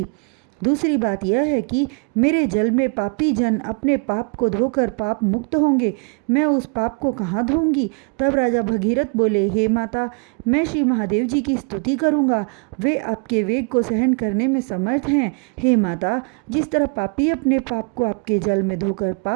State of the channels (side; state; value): left; quieter; 38.6 dB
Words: दूसरी बात यह है कि मेरे जल में पापी जन अपने पाप को धोकर पाप मुक्त होंगे। मैं उस पाप को कहाँ धोऊंगी? तब राजा भगीरथ बोले, हे माता, मैं श्री महादेव जी की स्तुति करूँगा। वे आपके वेग को सहन करने में समर्थ हैं। हे माता, जिस तरह पापी अपने पाप को आपके जल में धोकर